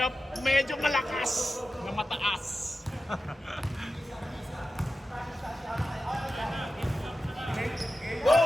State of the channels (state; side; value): normal; both; correlation 0.92